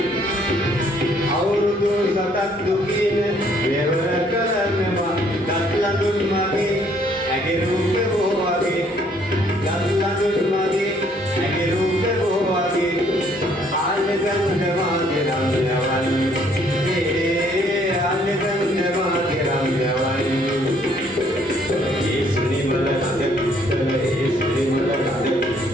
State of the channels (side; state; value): both; normal; correlation 0.64